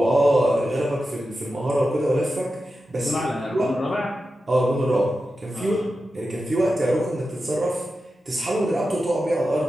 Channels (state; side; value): normal; both; correlation 0.91